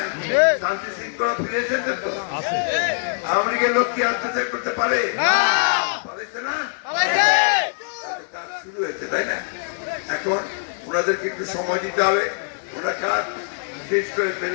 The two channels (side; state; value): right; silent; 61 dB below the other